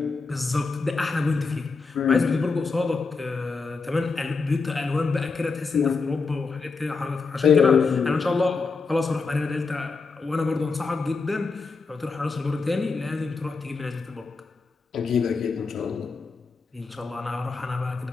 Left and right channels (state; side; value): quieter; right; 4.4 dB